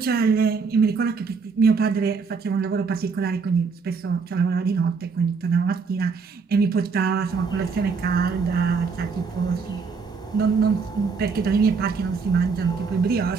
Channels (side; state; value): left; quieter; 5.1 dB